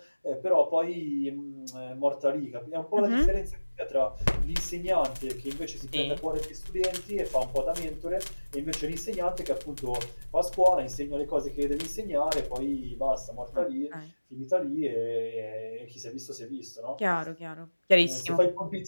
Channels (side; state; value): both; inverted; correlation -1.00